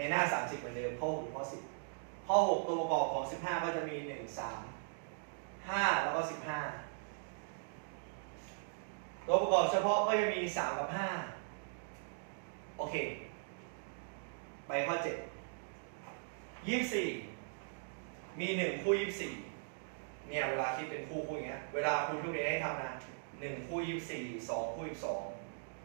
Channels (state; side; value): silent; left; digital silence